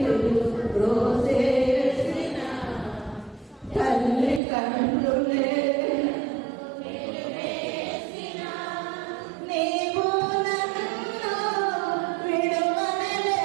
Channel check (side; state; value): left; drops out; at 4.4 s